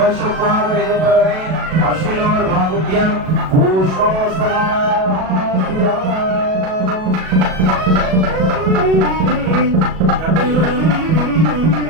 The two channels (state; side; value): late; left; 37 ms